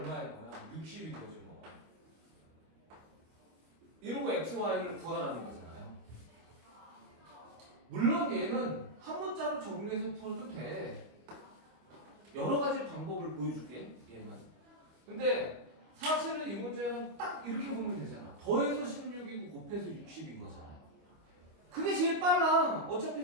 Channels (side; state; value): left; late; 25 ms